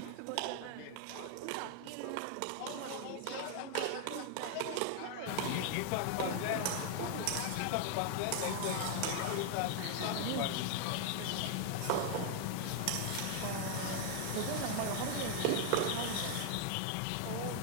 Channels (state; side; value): different; both; correlation 0.00